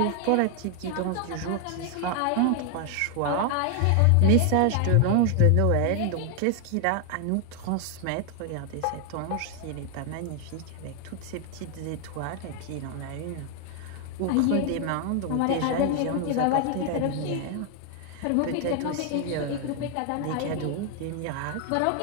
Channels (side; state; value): both; different; correlation 0.00